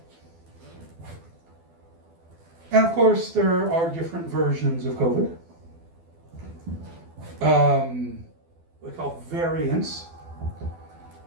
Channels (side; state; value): left; late; 12 ms